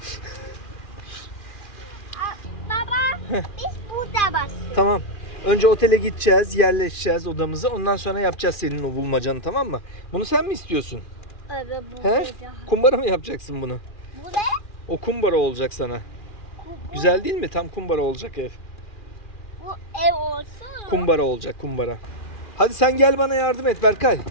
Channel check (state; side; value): late; right; 2.4 ms